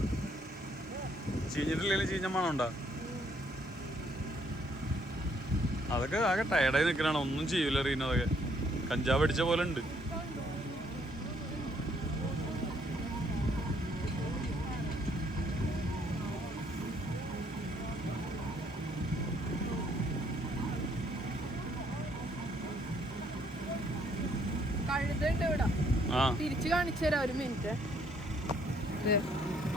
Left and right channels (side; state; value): both; normal; correlation 0.67